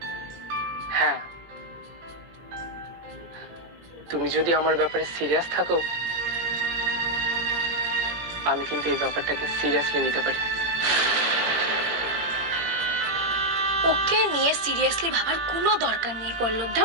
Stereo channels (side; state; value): left; late; 18 ms